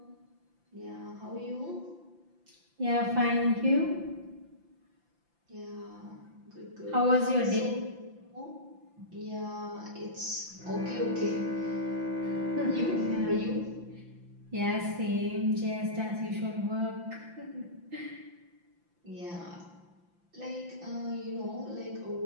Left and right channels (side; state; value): left; late; 5.8 ms